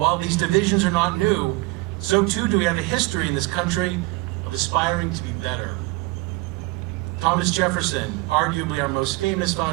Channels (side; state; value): left; quieter; 22.8 dB